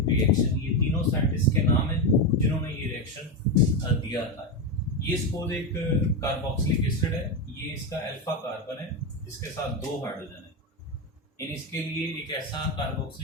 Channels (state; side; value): normal; both; correlation 0.11